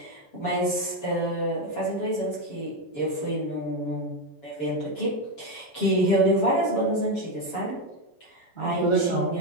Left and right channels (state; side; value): late; right; 7.1 ms